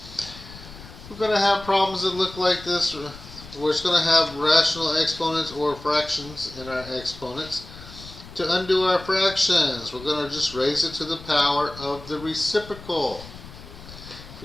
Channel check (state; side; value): noise; left; rumble, 16 dB below the sound